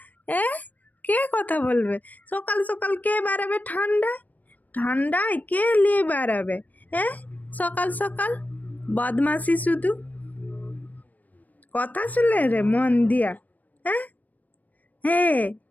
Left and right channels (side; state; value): right; late; 0.080 ms